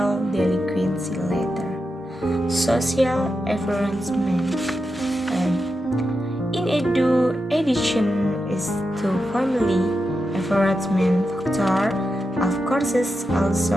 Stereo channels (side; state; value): both; normal; correlation 0.88